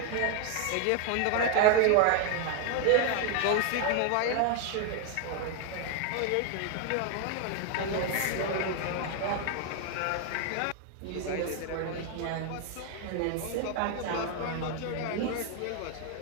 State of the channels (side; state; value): both; different; correlation 0.01